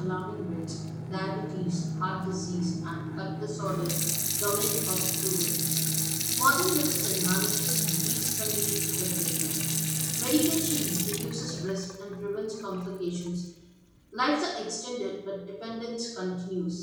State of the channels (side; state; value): both; identical; correlation 1.00